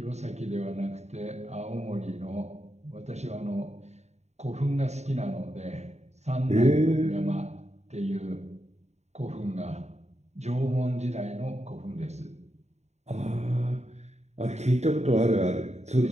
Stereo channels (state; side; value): late; left; 0.32 ms